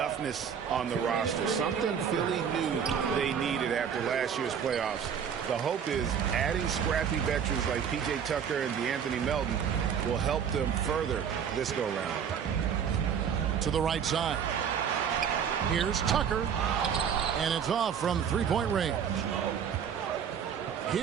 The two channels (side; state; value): left; quieter; 7.8 dB